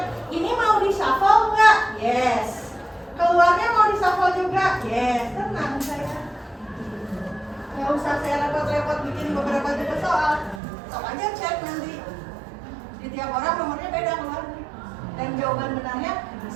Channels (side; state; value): left; drops out; at 10.6 s